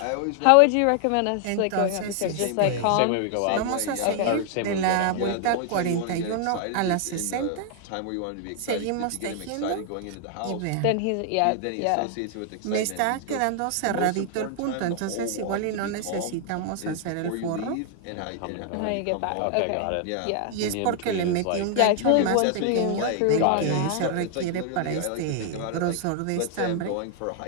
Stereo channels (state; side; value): different; both; correlation 0.00